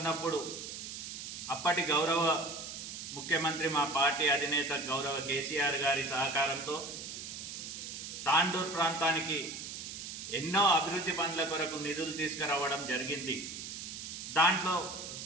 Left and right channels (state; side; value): noise; right; hiss, 8 dB below the sound